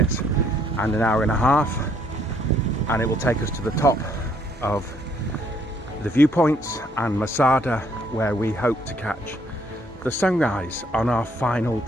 and an hour and a half, and it will take us to the top of the viewpoints and Masada, where we hope to catch the sunrise on our final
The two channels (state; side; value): normal; both; correlation 0.67